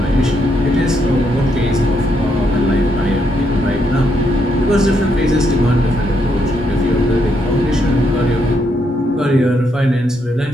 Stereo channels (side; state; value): both; normal; correlation 0.76